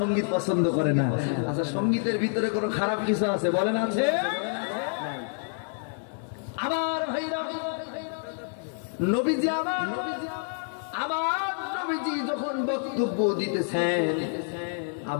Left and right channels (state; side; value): silent; right; 59 dB below the other